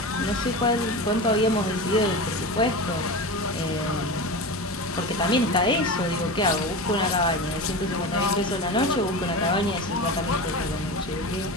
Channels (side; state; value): both; normal; correlation 0.26